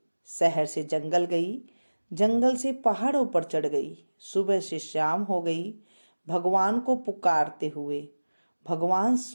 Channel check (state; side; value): inverted; both; correlation -1.00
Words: शहर से जंगल गई, जंगल से पहाड़ों पर चढ़ गई। सुबह से शाम हो गई भगवान को पुकारते हुए। भगवान